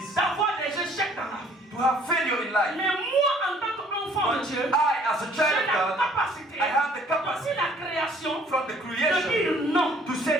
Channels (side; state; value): both; normal; correlation 0.59